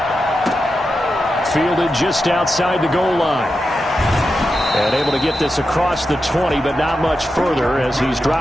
Fielded just outside the goal line. And able to get this across the 20, but not much further as he's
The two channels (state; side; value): normal; both; correlation 0.89